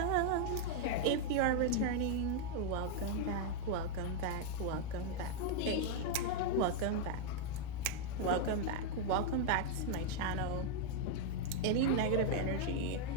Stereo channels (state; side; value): different; both; correlation 0.00